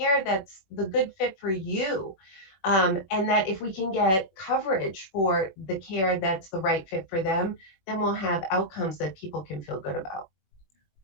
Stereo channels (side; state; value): right; late; 21 ms